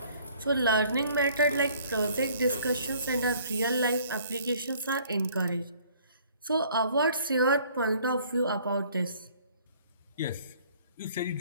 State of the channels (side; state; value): both; inverted; correlation -0.57